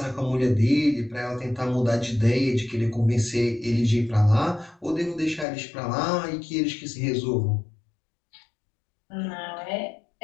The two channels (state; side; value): drops out; right; at 5.5 s